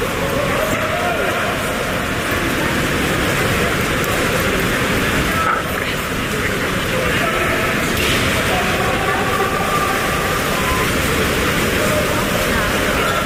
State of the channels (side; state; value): both; identical; correlation 1.00